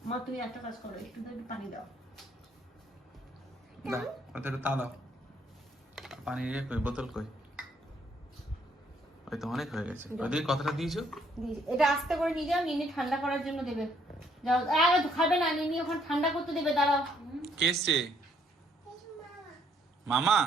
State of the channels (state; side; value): normal; both; correlation 0.67